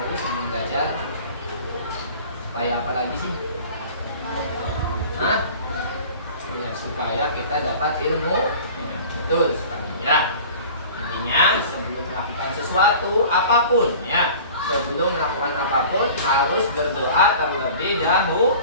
dulu sebelum belajar? Supaya apa lagi sih? Hah? Ya, supaya kita dapat ilmu. Ya, betul sekali. Ya. Intinya sebelum melakukan sesuatu apapun, ya, sebelum melakukan apapun harus berdoa terlebih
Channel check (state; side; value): inverted; both; correlation -0.42